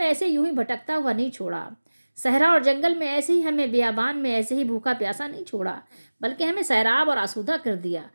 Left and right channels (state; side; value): inverted; both; correlation -1.00